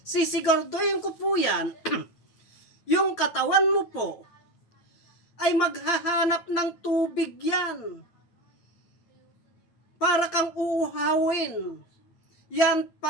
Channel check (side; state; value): right; late; 9.2 ms